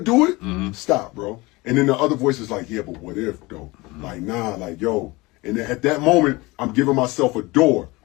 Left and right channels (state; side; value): quieter; right; 22.6 dB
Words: it. Stop, bro. And then the other voice is like, yeah, but what if, though? Like, nah, like, yo. And at that moment, I'm giving myself a door.